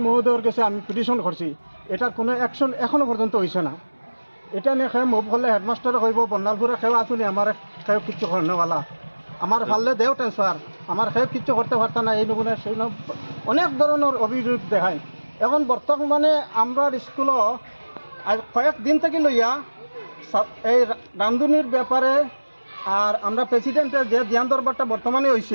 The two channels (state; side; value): inverted; both; correlation -1.00